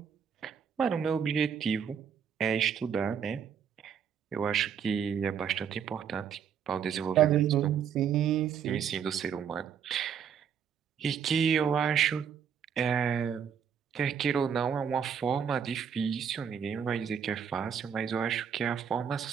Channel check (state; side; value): quieter; left; 7.7 dB